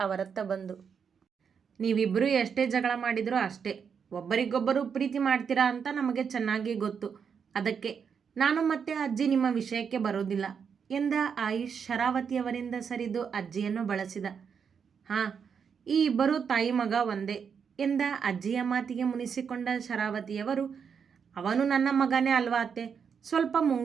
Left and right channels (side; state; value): left; quieter; 6.7 dB